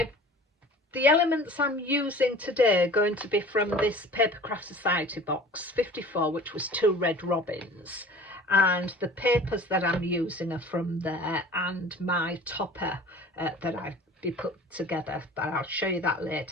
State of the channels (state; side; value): normal; both; correlation 0.44